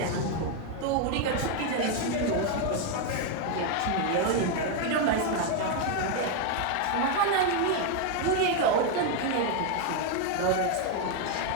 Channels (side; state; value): both; different; correlation 0.01